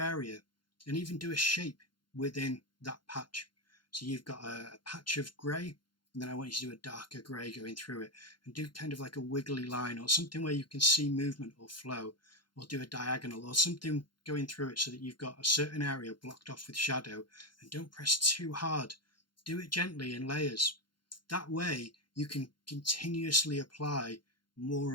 and even do a shape within that patch. So you've got a patch of grey, and then I want you to do a darker grey going through it, and do kind of like a wiggly line or something where you can see movement or flow, or do a diagonal or something going through it so that you've got a certain area blocked off with shadow. And don't press too hard. Do it gently in layers. That way you can continuously apply more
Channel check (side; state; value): right; late; 0.72 ms